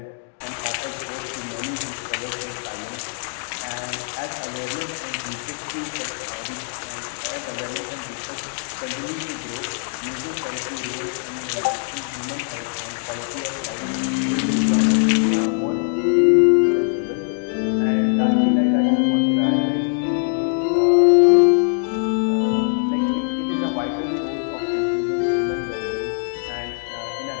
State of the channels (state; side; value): silent; right; 64 dB below the other